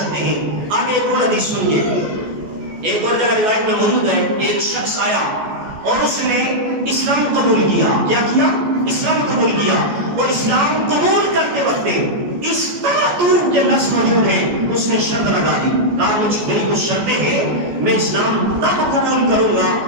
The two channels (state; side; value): late; left; 14 ms